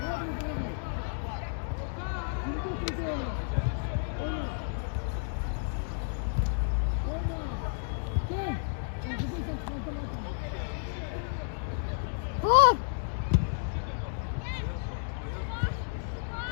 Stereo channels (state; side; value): silent; right; digital silence